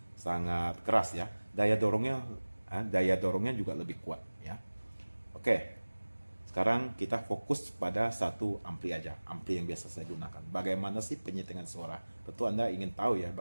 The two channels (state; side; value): inverted; both; correlation -1.00